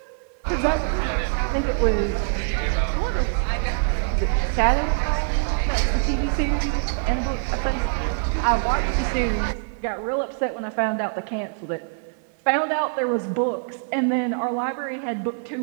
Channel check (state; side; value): silent; left; 60 dB below the other